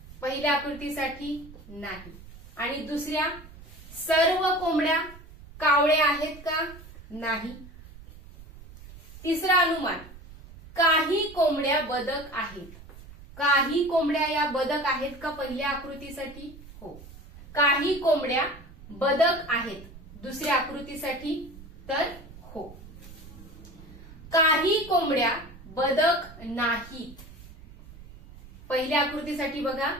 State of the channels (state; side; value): noise; right; rumble, 18 dB below the sound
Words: पहिल्या आकृतीसाठी नाही. आणि दुसऱ्या, सर्व कोंबड्या कावळे आहेत का? नाही. तिसरा अनुमान, काही कोंबड्या बदक आहेत. काही कोंबड्या या बदक आहेत का पहिल्या आकृतीसाठी? हो. काही कोंबड्या बदक आहेत दुसऱ्या आकृतीसाठी तर हो. काही कोंबड्या बदक नाहीत. पहिल्या आकृतीसाठी बघा,